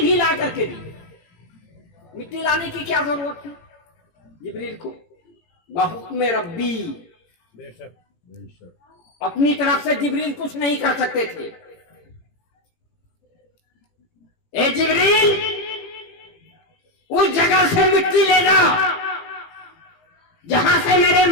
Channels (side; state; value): right; late; 18 ms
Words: भी ला करके दी। मिट्टी लाने की क्या जरूरत थी जिब्रील को? बहुक्म रब्बी, अपनी तरफ से जिब्रील कुछ नहीं कर सकते थे। ए जिब्रील, उस जगह से मिट्टी ले जाओ जहां से मेरे